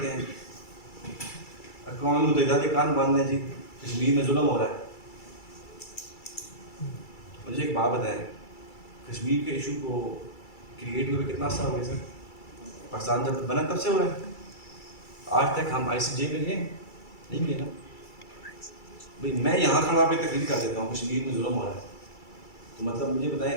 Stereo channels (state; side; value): late; right; 2.3 ms